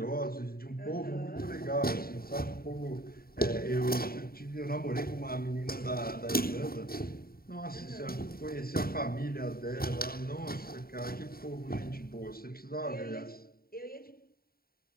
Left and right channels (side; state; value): right; late; 0.43 ms